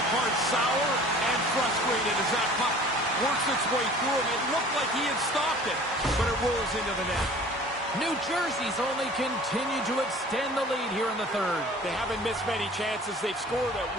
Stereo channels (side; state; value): both; normal; correlation 0.46